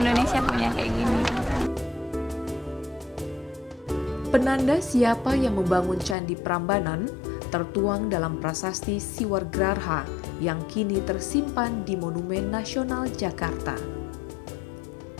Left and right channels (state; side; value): drops out; right; at 6.2 s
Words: punya kayak gini. Penanda siapa yang membangun Candi Prambanan tertuang dalam prasasti Siwargrarha yang kini tersimpan di Monumen Nasional Jakarta.